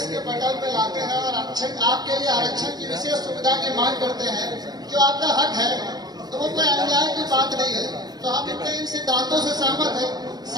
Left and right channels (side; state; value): left; late; 0.19 ms